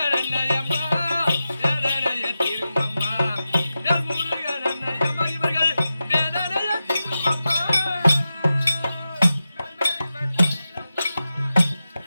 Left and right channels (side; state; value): both; inverted; correlation -0.92